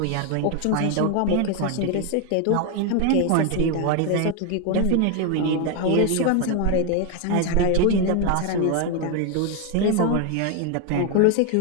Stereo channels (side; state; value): both; different; correlation 0.01